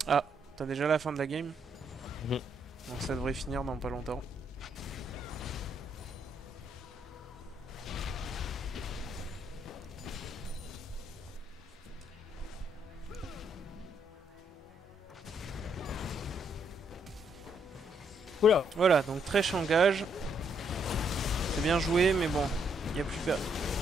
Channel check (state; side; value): normal; both; correlation 0.73